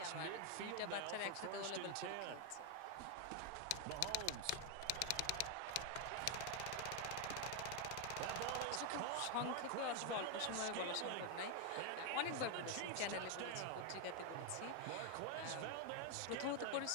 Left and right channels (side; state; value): both; different; correlation 0.00